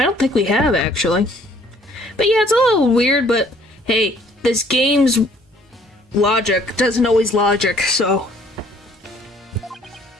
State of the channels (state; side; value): normal; both; correlation 0.60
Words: don't think we have, actually. But yeah, it's a little weird, but hey, this game's logic doesn't always logic, so...